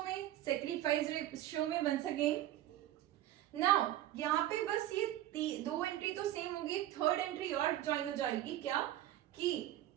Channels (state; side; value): quieter; left; 13.5 dB